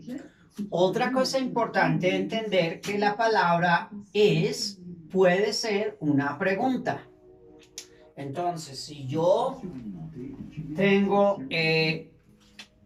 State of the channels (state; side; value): identical; both; correlation 1.00